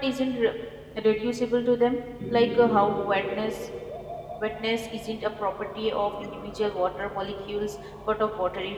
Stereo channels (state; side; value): identical; both; correlation 1.00